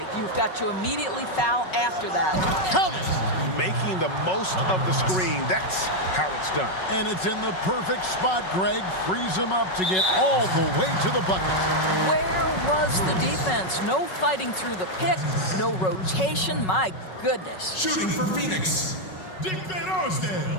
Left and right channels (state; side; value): late; right; 5.4 ms